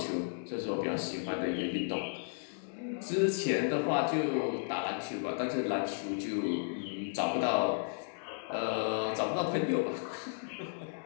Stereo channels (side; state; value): right; silent; digital silence